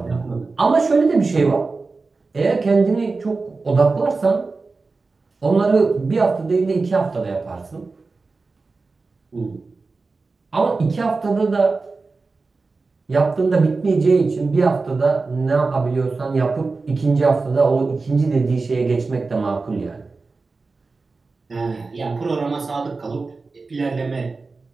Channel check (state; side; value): quieter; left; 4.0 dB